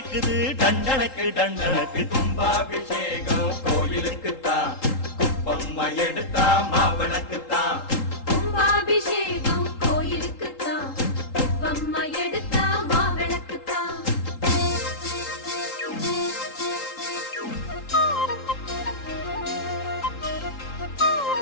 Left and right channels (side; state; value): right; late; 3.8 ms